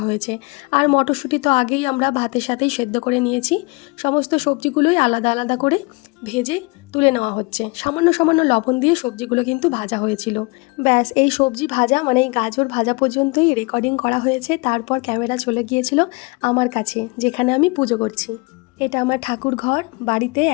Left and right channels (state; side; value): quieter; right; 27.9 dB